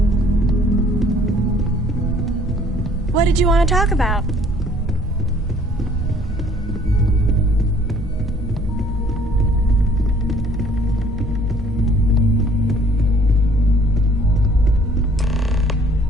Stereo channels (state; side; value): normal; both; correlation 0.58